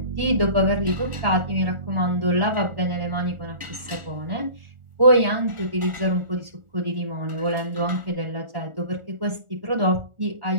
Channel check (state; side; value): late; left; 1.4 ms